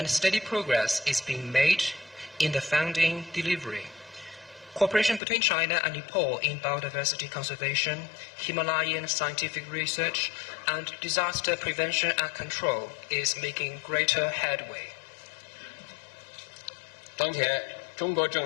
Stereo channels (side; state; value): right; drops out; at 5.2 s